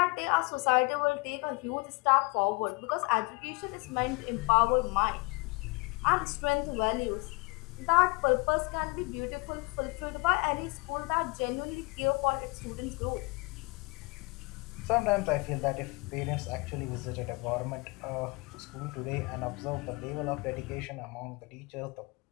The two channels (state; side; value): quieter; right; 28.2 dB